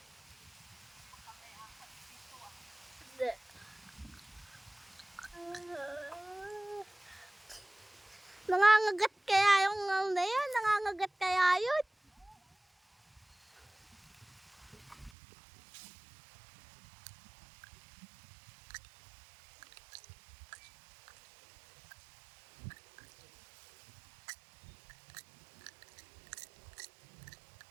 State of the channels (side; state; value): left; drops out; at 15.1 s